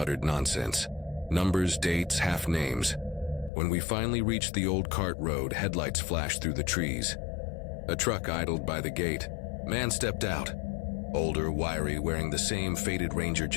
nonsense. Numbers, dates, half names. When we finally reached the old cart road, headlights flashed through the trees. A truck idled by the gate. Man stepped out. Older, wiry, wearing the same faded Ranger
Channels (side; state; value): right; drops out; at 3.5 s